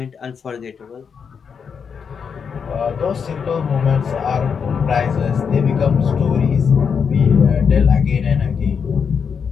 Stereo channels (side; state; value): right; quieter; 6.5 dB